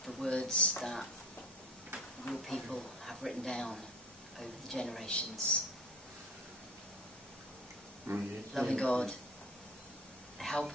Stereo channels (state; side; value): normal; both; correlation 0.43